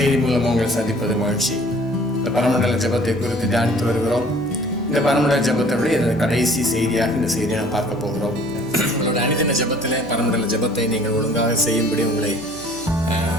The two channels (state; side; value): noise; left; hum, 22 dB below the sound